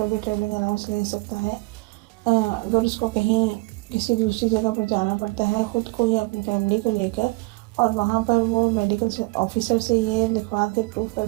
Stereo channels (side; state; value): left; quieter; 25.2 dB